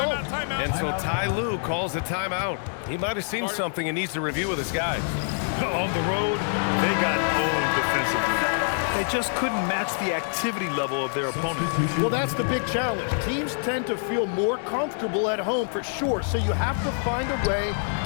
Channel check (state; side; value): silent; right; 61 dB below the other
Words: Timeout. And so Ty Lue calls a timeout. He might have seen something and needs to review with his guys. On the road, they got owned defensively. They just couldn't match the activity level of their opponent. Well, that's the big challenge. Teams tend to feel more comfortable at home for sure, so you have to find a way